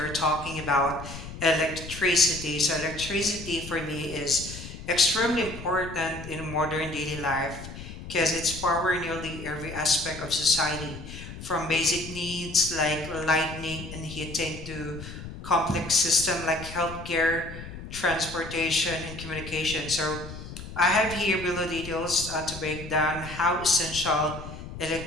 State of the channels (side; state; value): left; noise; rumble, 11 dB below the sound